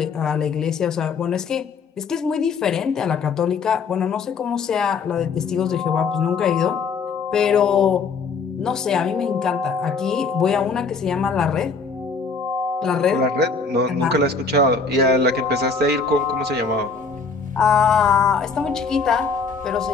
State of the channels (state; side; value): quieter; right; 4.8 dB